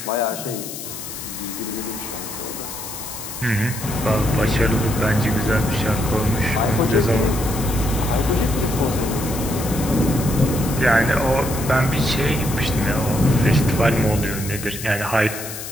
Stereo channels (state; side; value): noise; left; hiss, 9 dB below the sound